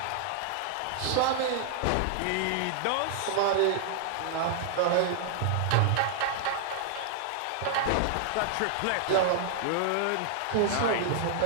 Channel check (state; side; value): different; both; correlation -0.01